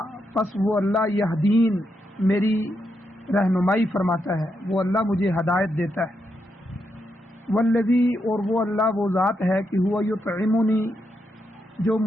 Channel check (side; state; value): both; normal; correlation 0.82